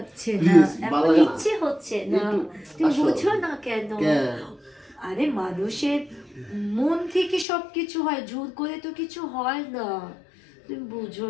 না, Please, এখন ভালো লাগে না। ইচ্ছে হচ্ছে না। তুমি আসো। বুঝো না কেন? আরে মানুষের মন থেকে সবকিছু হয়, জোর করে তো কিছু হয় না। তুমি বুঝো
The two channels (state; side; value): drops out; right; at 7.5 s